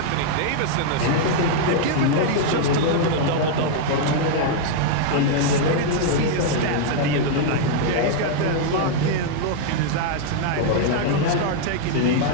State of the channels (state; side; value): different; both; correlation -0.01